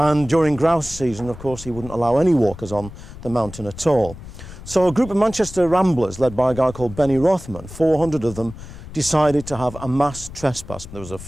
during grouse season, of course, he wouldn't allow any walkers on the mountain at all. So a group of Manchester ramblers, led by a guy called Benny Rothman, 400 of them, decided to have a mass trespass. There was a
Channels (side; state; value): left; noise; rumble, 14 dB below the sound